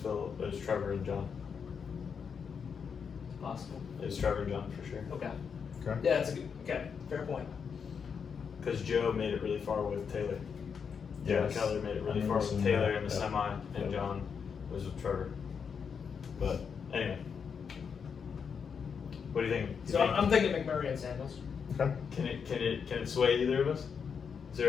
It was Trevor and John. It's possible. It was Trevor and John for sure. Okay. Okay. Yeah, that's a good. Okay, fair point. Because Joe made it really far with Taylor. Yes. Joe Keller made it really I far remember with seeing Taylor that. in the Yep. semi, and Yep. John was with Trevor. But anyway, what do you think? So I'm thinking McMurray and Samuels. Okay. Can it sway either of us? Is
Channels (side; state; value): right; quieter; 6.5 dB